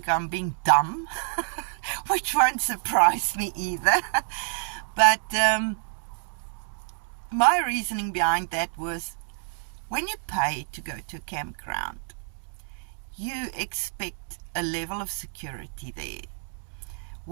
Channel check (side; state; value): left; silent; digital silence